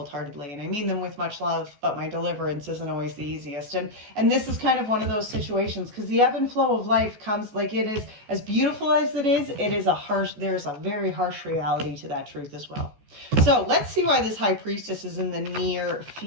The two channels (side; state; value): left; late; 14 ms